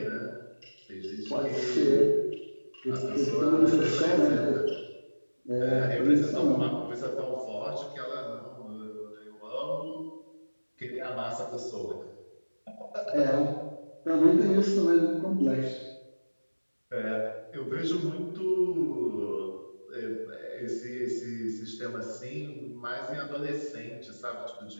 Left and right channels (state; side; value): inverted; both; correlation -1.00